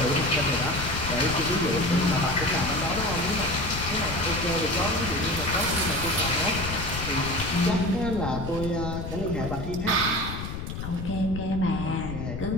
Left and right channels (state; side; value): noise; left; rumble, 6 dB below the sound